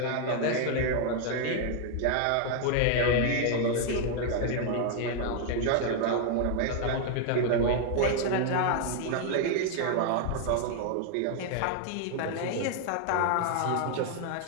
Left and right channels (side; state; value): both; different; correlation 0.00